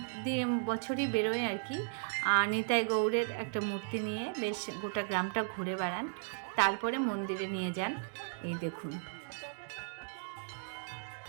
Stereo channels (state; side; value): silent; left; digital silence